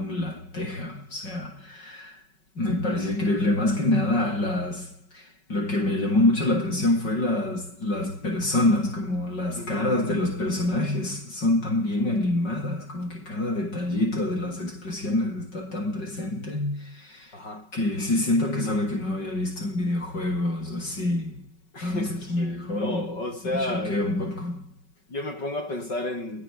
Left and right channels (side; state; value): right; late; 5.3 ms